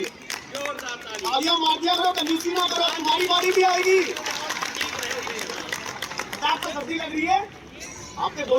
जोरदार तालियां मार दिया करो, कंजूसी ना करो, तुम्हारी बारी भी आएगी। आपको सर्दी लग रही है, आपके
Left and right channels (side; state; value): both; identical; correlation 1.00